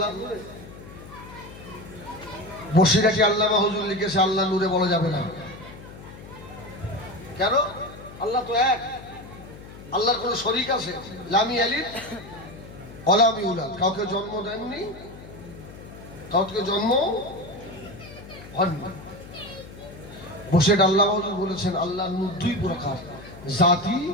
নূরে বসিরাটি আল্লামা হুজুর লিখেছে আল্লাহ নূরে বলা যাবে না। কেন? আল্লাহ তো এক, আল্লাহর কোন শরীক আছে? লামি আলিদ অলামি উলাদ, কাউকে জন্ম দেননি, কাউকে জন্ম হননি। বসে আল্লাহ হুজুর বলেছেন আল্লাহ নূর দুই প্রকার, জাতি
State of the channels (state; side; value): noise; left; hum, 16 dB below the sound